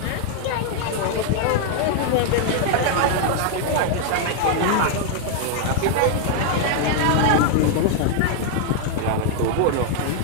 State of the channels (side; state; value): both; different; correlation 0.00